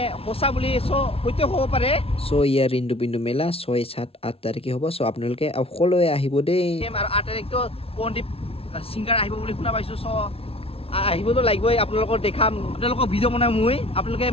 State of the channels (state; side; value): late; right; 0.27 ms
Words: সঁচা বুলি। চ' সত্য হ'ব পাৰে। চ' ইয়াৰ ৰেইনডুপিন্দু মেলা 6, 7, 8 তাৰিখে হ'ব। চ' আপোনালোকে সকলোৱে আহিব দেই। আৰু 8 তাৰিখটো পণ্ডিত ছিংগাৰ আহিব বুলি শুনা পাইছোঁ। চ' আহিবতো লাগিবই, আপোনালোকক দেখাম, আপোনালোকক ভিডিঅ' বনাই মই। আপোনালোকে